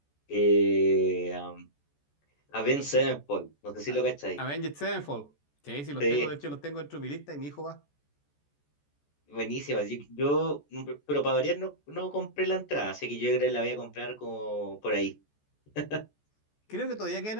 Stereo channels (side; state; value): right; late; 14 ms